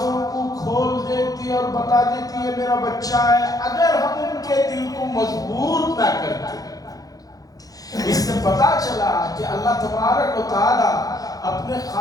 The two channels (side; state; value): right; late; 0.18 ms